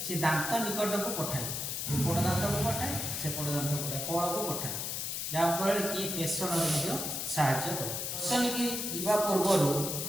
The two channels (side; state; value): left; noise; hiss, 3 dB below the sound